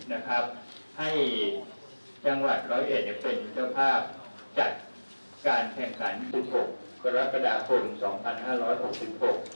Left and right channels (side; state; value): both; inverted; correlation -1.00